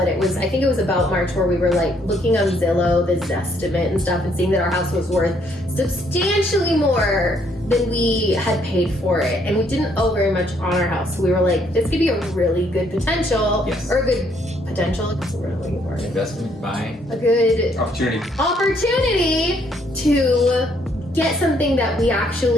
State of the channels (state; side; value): normal; both; correlation 0.69